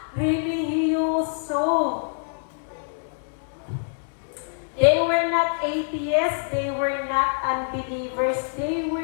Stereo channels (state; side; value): silent; right; digital silence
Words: religyoso. They were not atheists, they were not unbelievers, they